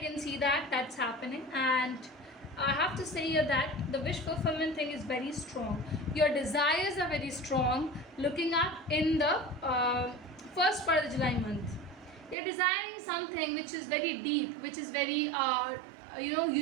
see that that's happening. And I have to say here that the wish fulfillment thing is very strong. Your desires are very strong. Looking up in the first part of the July month, you're desiring something which is very deep, which is very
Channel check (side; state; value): left; drops out; at 12.4 s